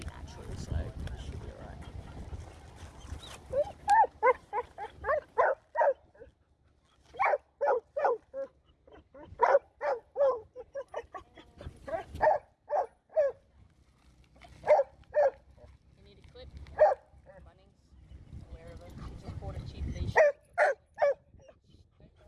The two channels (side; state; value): both; identical; correlation 1.00